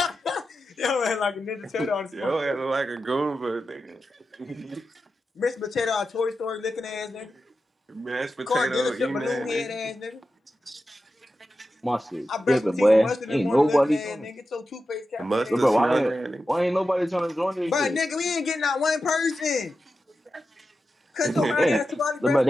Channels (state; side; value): normal; both; correlation 0.91